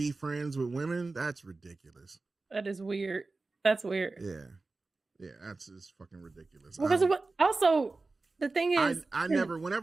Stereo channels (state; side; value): quieter; left; 3.6 dB